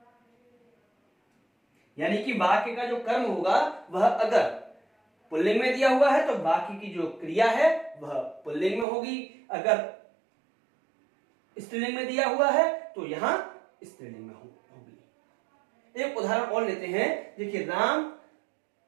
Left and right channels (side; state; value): left; drops out; at 8.8 s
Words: यानी कि वाक्य का जो कर्म होगा वह अगर पुल्लिंग में दिया हुआ है तो बाकी की जो क्रिया है वह पुल्लिंग में होगी, अगर स्त्रीलिंग में दिया हुआ है तो यहां स्त्रीलिंग में होगी। एक उदाहरण और लेते हैं, देखिए, राम